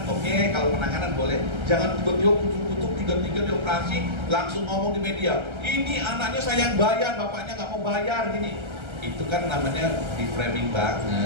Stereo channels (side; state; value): left; late; 1.3 ms